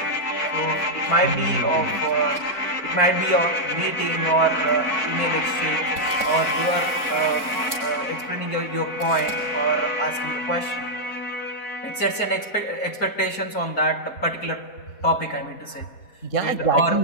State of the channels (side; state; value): right; late; 4.3 ms